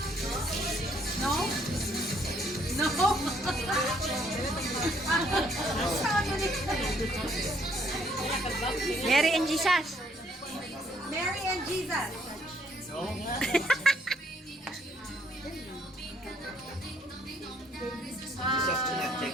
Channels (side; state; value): both; normal; correlation 0.67